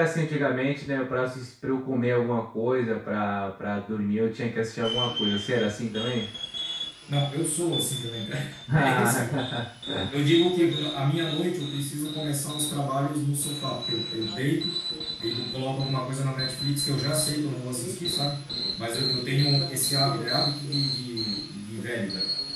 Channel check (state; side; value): identical; both; correlation 1.00